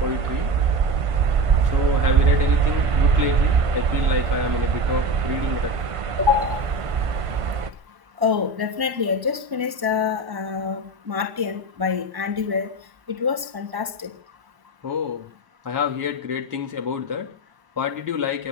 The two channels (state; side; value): late; left; 1.0 ms